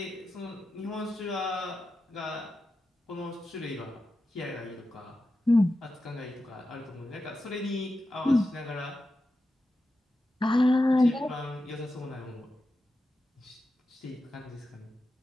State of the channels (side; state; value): both; normal; correlation 0.91